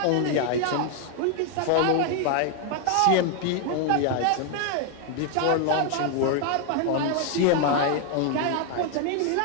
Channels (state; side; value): different; both; correlation 0.00